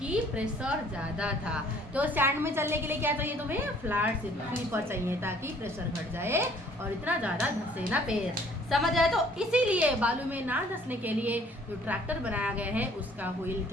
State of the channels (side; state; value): both; normal; correlation 0.57